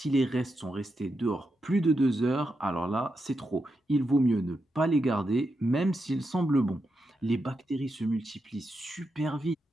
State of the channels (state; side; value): normal; both; correlation 0.86